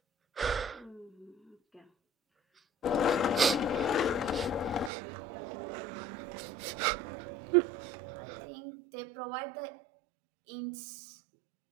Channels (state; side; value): drops out; left; at 4.9 s